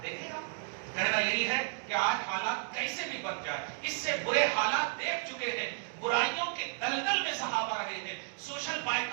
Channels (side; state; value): left; silent; 56 dB below the other